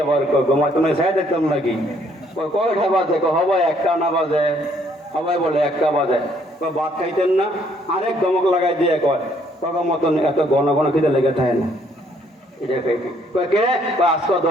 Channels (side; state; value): both; normal; correlation 0.66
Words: আবার ঘুমাই তুমি চাই দেখতাম নাকি? কয়টা বাজে? হবাই 1টা না বাজে, সবাই বলে 1টা বাজে। ভাত খাইতেন না? আরেক ধমক লাগাই দিয়ে কয় তখন মতন এত ঘন ঘন খিদে লেগে থাকে না। এটা কে আজকে